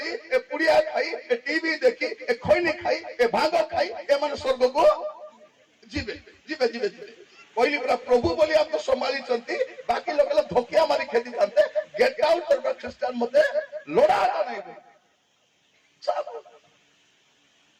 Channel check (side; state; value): both; identical; correlation 1.00